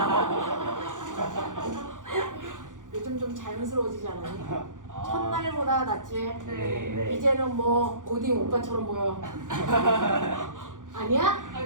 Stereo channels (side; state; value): left; late; 0.88 ms